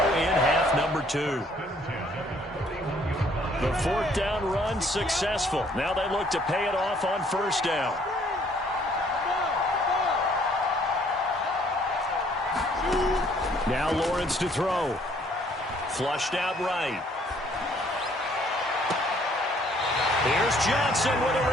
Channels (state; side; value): normal; both; correlation 0.62